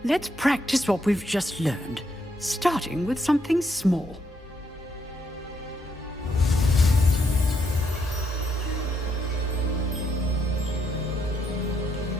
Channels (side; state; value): both; normal; correlation 0.76